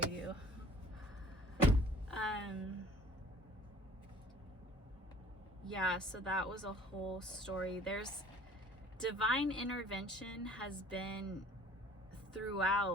Yeah, so that was a whole story. There's divine intervention has been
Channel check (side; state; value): both; normal; correlation 0.50